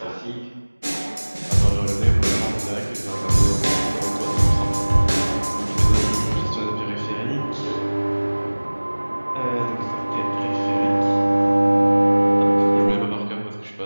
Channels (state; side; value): inverted; both; correlation -1.00